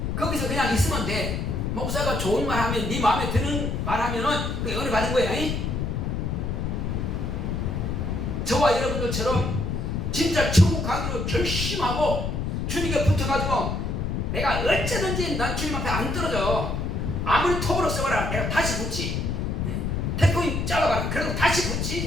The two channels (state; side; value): noise; left; rumble, 1 dB below the sound